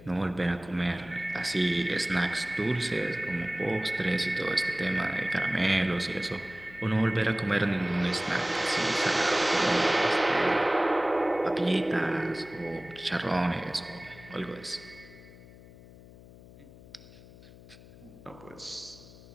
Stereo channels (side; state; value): left; noise; hum, 20 dB below the sound